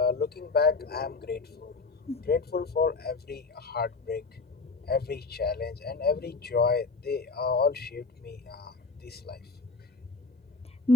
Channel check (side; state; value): right; quieter; 4.0 dB